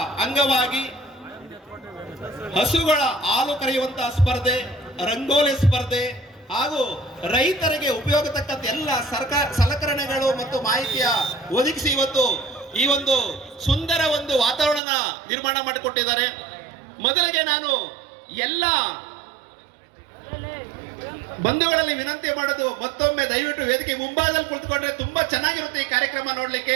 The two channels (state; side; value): drops out; left; at 14.8 s